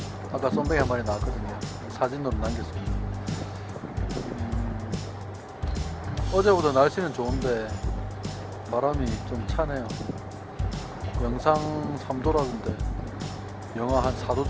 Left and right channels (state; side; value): identical; both; correlation 1.00